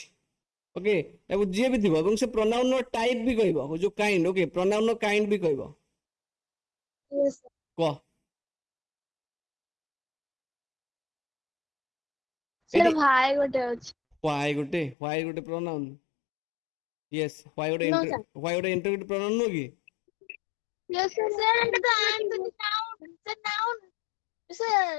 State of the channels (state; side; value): drops out; right; at 15.0 s